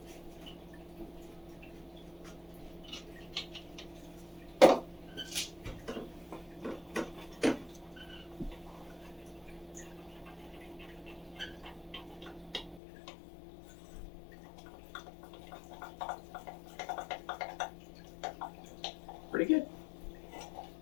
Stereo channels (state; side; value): drops out; right; at 12.8 s